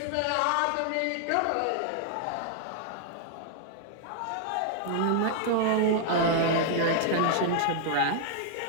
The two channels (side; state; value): both; different; correlation -0.01